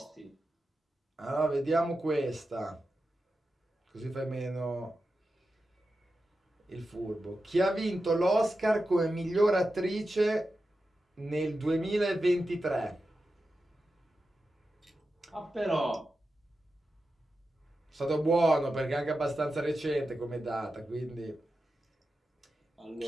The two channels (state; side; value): normal; both; correlation 0.91